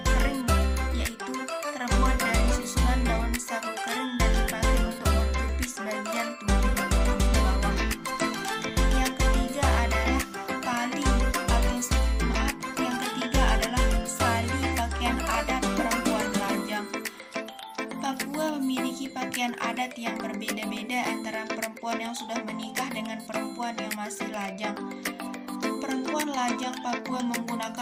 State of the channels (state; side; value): identical; both; correlation 1.00